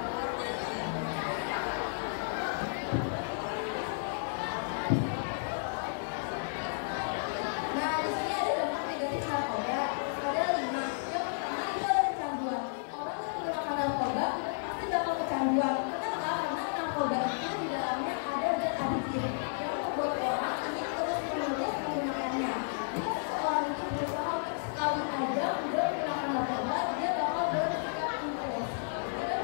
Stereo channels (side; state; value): right; silent; digital silence